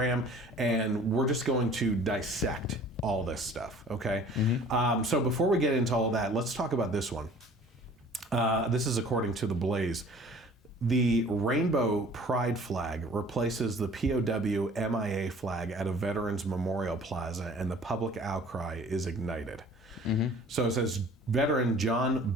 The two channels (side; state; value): both; normal; correlation 0.49